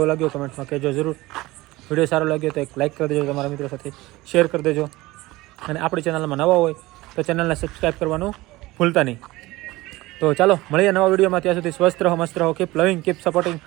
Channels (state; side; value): quieter; left; 19.6 dB